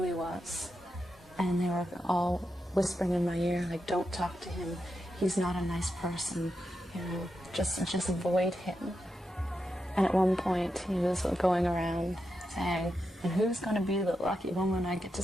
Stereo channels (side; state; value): both; normal; correlation 0.87